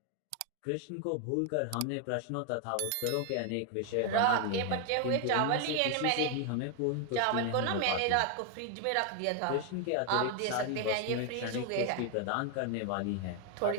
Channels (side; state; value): both; different; correlation 0.01